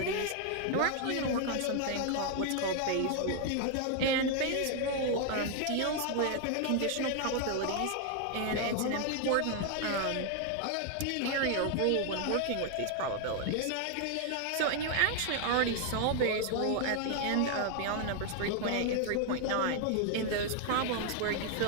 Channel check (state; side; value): different; both; correlation 0.00